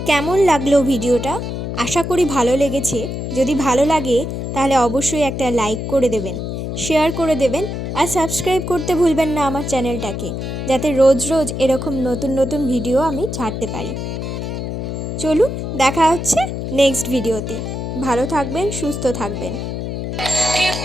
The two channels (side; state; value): left; noise; hum, 4 dB below the sound